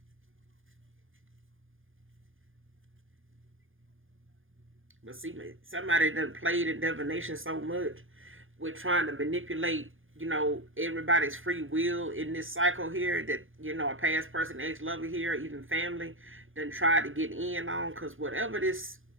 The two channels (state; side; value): late; left; 0.58 ms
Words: But see, somebody done played in divination so much with trying to manipulate, everybody's free will in this cycle here, that, a past person, ex-lover here, even family, done tried to get in on, because whatever this